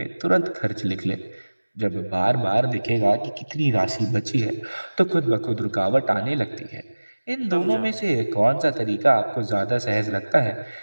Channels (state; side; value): inverted; both; correlation -1.00